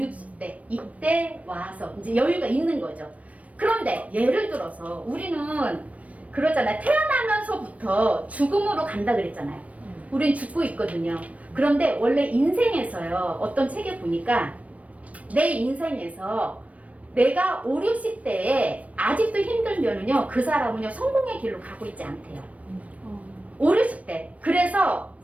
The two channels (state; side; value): late; left; 0.067 ms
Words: 이때 와서 이제 여유가 있는 거죠. 그런데 예를 들어서 우리는 그러잖아요. 태어나면서부터 죽음으로 간다 그랬잖아요. 우린 죽고 있거든요. 그런데 원래 인생에서요. 어떤 책에 보니까 내 인생에서 내가 5, 60대에 아직도 힘들면은요. 그 사람은요. 성공의 길로 가고 있지 않대요. 5, 60대. 그래서